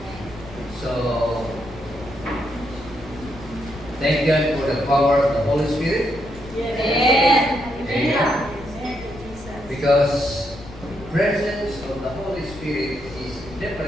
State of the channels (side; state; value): left; noise; rumble, 17 dB below the sound